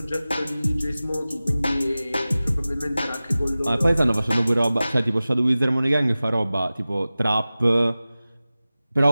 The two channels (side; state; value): both; inverted; correlation -0.97